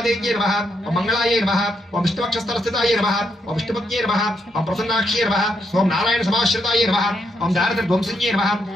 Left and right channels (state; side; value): normal; both; correlation 0.78